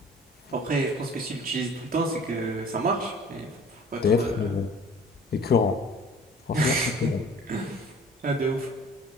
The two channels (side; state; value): both; normal; correlation 0.48